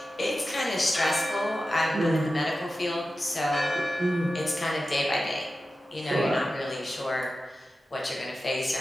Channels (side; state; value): both; normal; correlation 0.93